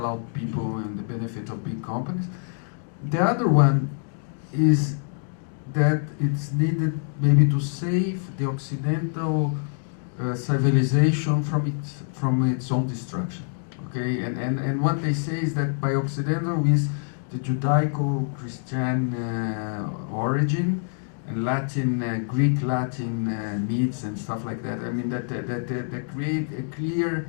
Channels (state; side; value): silent; right; digital silence